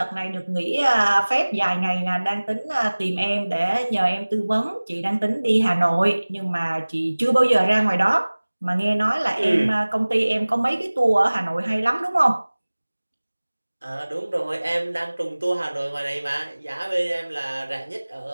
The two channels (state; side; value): inverted; both; correlation -1.00